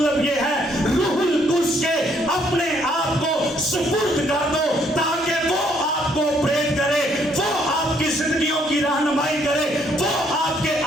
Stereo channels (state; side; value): normal; both; correlation 0.68